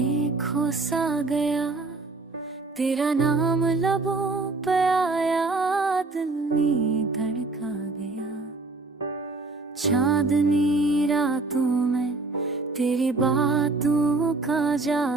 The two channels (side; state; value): left; quieter; 3.4 dB